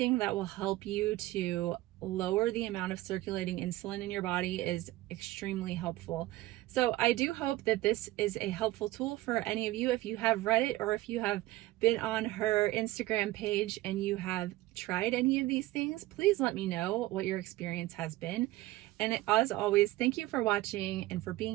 that will help you to lower the amount of circulating insulin in your body is extremely helpful. So I do hope that this is a helpful tool for any of you. If you have read it or if you have been on her Instagram page and you have tried any of these things, please let me know what your experience has been. And as always, thank you for watching and for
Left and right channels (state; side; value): quieter; left; 17.4 dB